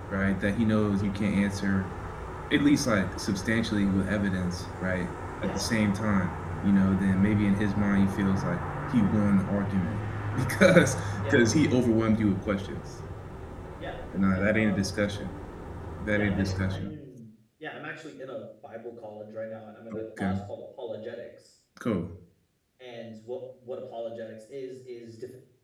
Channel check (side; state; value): both; identical; correlation 1.00